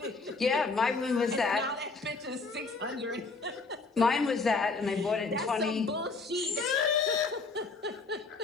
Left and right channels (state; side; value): quieter; right; 4.1 dB